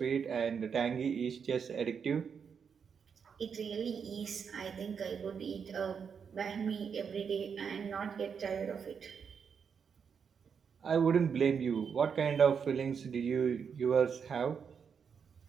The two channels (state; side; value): quieter; left; 6.6 dB